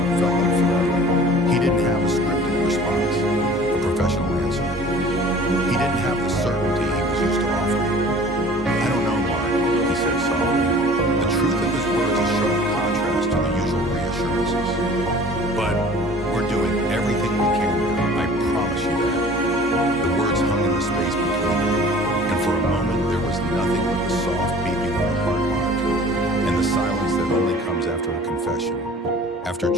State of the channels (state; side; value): normal; both; correlation 0.47